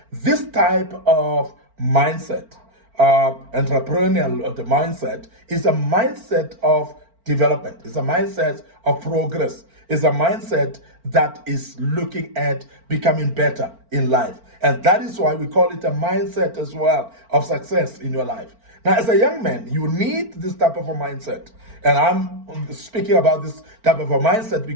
this type of mindset, entrepreneurial mindset, is a mindset of development, it's a mindset of progress, it's a mindset that is looking at becoming better in life. And that is why we call it a mindset as well of success in your life. Now, as a young man, you need this type of a mindset. And I'm speaking about this type of a mindset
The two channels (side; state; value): left; late; 4.4 ms